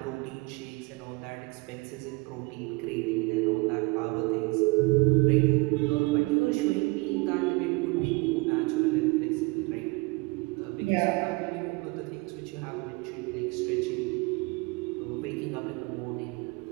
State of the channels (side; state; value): left; quieter; 26.0 dB